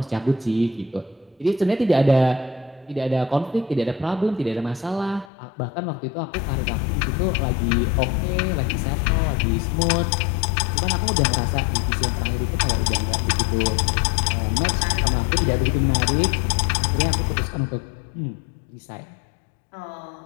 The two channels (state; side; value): drops out; right; at 5.3 s